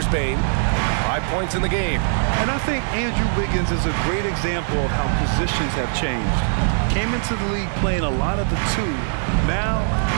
Bane. 5 points in the game. And I think Andrew Wiggins is a great example of how positions have changed. Came into the league playing a lot of the 2. Now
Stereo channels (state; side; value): silent; left; 65 dB below the other